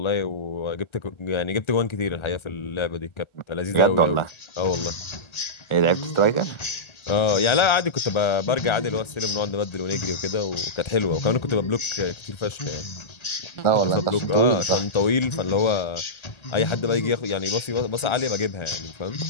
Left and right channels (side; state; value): right; late; 1.4 ms